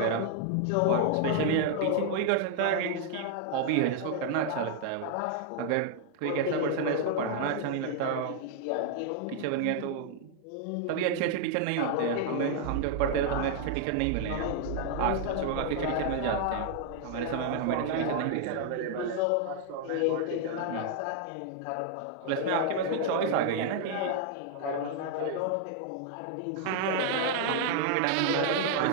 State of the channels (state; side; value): different; both; correlation 0.00